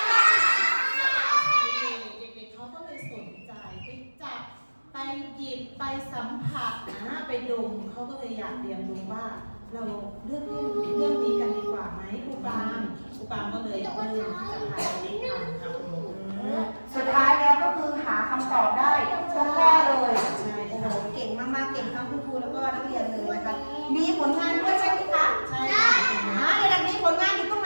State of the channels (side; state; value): both; inverted; correlation -1.00